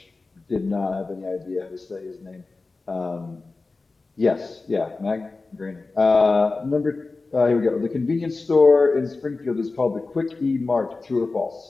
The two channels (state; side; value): quieter; right; 3.7 dB